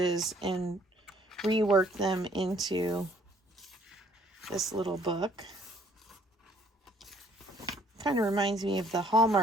and reworked them into this little book. Kind of reminds me of the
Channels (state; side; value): normal; both; correlation 0.62